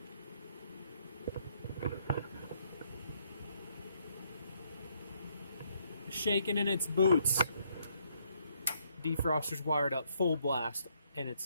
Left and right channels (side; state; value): both; inverted; correlation -0.71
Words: Shaking in its boots. Defroster's wired up full blast, and